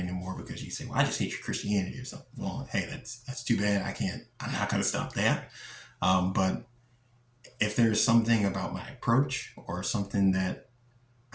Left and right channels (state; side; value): identical; both; correlation 1.00